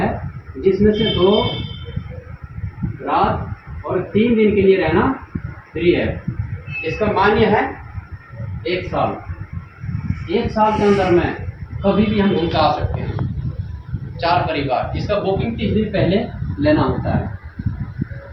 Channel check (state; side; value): identical; both; correlation 1.00